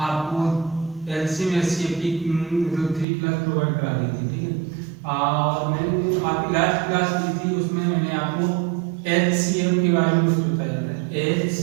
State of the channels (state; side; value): drops out; left; at 3.1 s